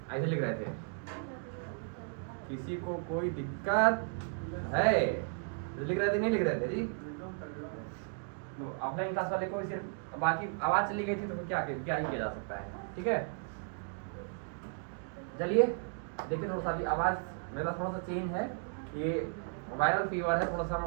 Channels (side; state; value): left; silent; 55 dB below the other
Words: ऐसे लिख रहे थे किसी को कोई दिक्कत है, लिख रहे थे नहीं लिख रहे थे जी। ऑफलाइन क्लास वाले को सिर्फ बाकी आवाज़ चली गई थी तो क्या ही किया जा सकता है, ठीक है। चलिए देखिए, थोड़ा सा अभी आवाज़ मेरा थोड़ा सा चेंज है, ये वायरल फीवर है, थोड़ा सा